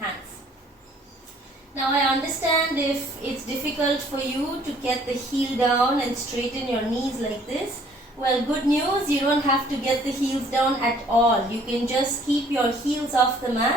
Now I understand if it's difficult for you to get the heel down and straighten your knees like this. Well, good news, you don't have to get the heels down at all. You can just keep your heels off the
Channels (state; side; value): normal; both; correlation 0.58